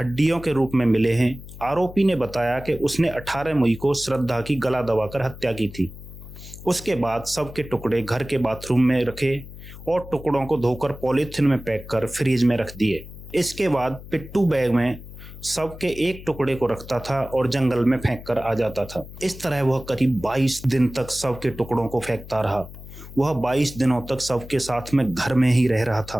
के रूप में मिले हैं। आरोपी ने बताया कि उसने 18 मई को श्रद्धा की गला दबाकर हत्या की थी। उसके बाद शव के टुकड़े घर के बाथरूम में रखे और टुकड़ों को धोकर पॉलीथिन में पैक कर फ्रीज में रख दिए। इसके बाद पिट्ठू बैग में शव के एक टुकड़े को रखता था और जंगल में फेंक कर आ जाता था। इस तरह वह करीब 22 दिन तक शव के टुकड़ों को फेंकता रहा। वह 22 दिनों तक शव के साथ में घर में ही रह रहा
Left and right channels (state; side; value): noise; left; hum, 15 dB below the sound